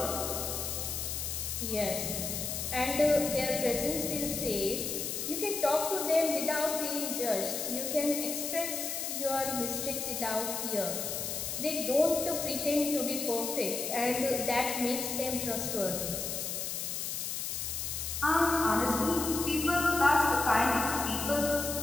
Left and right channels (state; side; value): noise; left; hiss, 3 dB below the sound